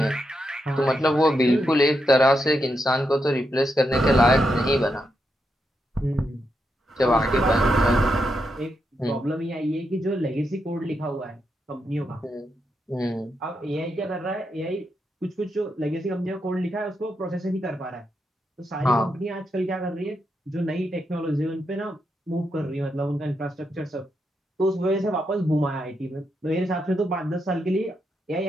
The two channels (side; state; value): both; normal; correlation 0.83